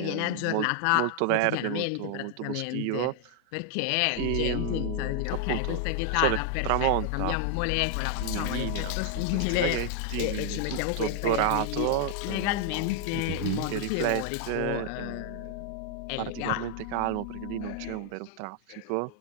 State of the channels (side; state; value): both; different; correlation 0.00